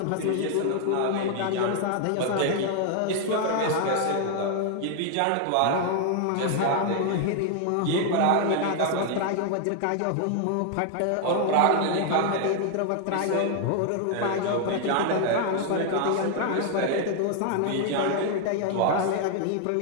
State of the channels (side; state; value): both; different; correlation 0.00